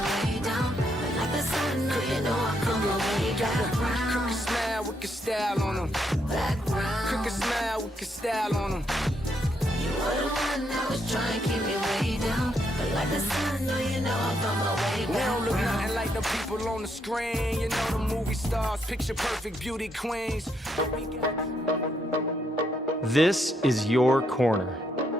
down. Like the sun, no, you know I come away back. Crooked smile with your style on them. Crooked smile with your style on them. You were the one that was trying to keep me way down. But like the sun, no, you know I found my way back. We don't look nothing like the people on the screen. You know the movie stars, picture perfect beauty queens. This is your corner.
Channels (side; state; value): both; normal; correlation 0.76